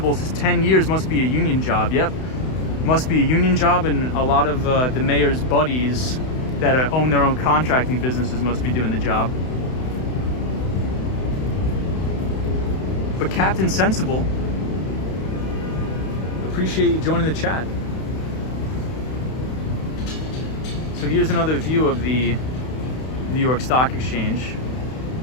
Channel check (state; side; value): late; right; 32 ms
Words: says 10 years must be a union job. Yep, must be a union job, and a lot of the mayor's buddies that own their own contracting businesses must be doing the job. But Captain Sensible, appreciate you joining the chat. So here's another view of the New York Stock Exchange.